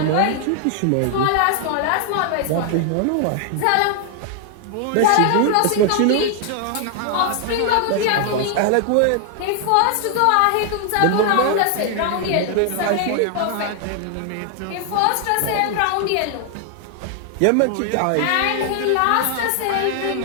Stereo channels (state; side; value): different; both; correlation 0.00